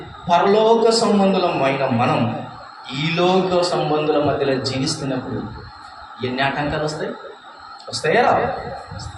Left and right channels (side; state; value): both; identical; correlation 1.00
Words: పరలోక సంబంధులమైన మనం ఈ లోక సంబంధుల మధ్యలో జీవిస్తున్నప్పుడు ఎన్ని ఆటంకాలు వస్తాయా?